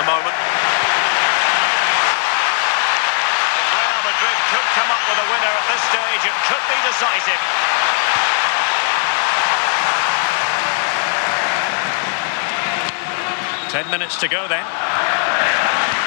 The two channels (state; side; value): silent; right; 67 dB below the other